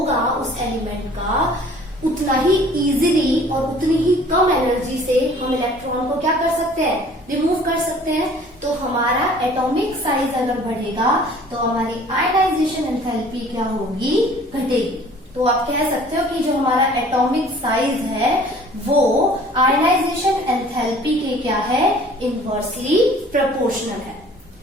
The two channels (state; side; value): normal; both; correlation 0.51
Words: उस एलिमेंट का, उतना ही इजीली और उतनी ही कम एनर्जी से हम इलेक्ट्रॉन को क्या कर सकते हैं, रिमूव कर सकते हैं. तो हमारा एटॉमिक साइज अगर बढ़ेगा तो हमारी आयनाइजेशन एंथैल्पी क्या होगी, घटेगी. तो आप कह सकते हो कि जो हमारा एटॉमिक साइज है वो आयनाइजेशन एंथैल्पी के क्या है, इनवर्सली प्रोपोर्शनल है.